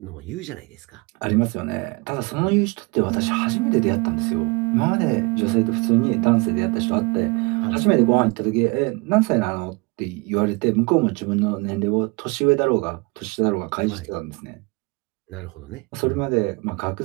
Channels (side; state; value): left; quieter; 27.4 dB